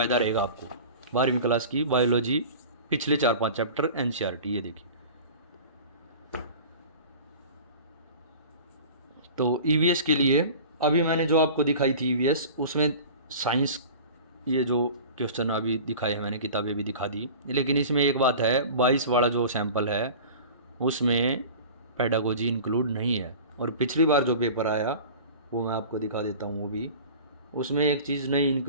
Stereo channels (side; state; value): both; inverted; correlation -0.38